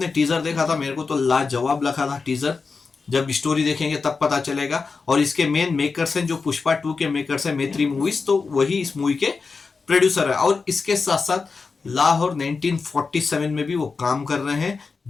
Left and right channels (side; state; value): right; quieter; 4.6 dB